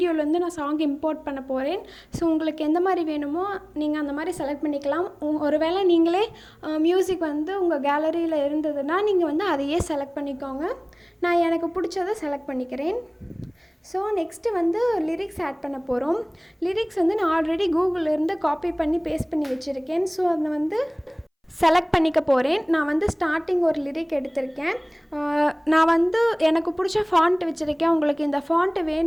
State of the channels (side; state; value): both; identical; correlation 1.00